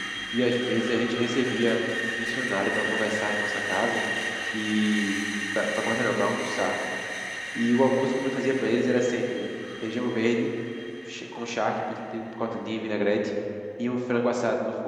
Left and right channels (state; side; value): identical; both; correlation 1.00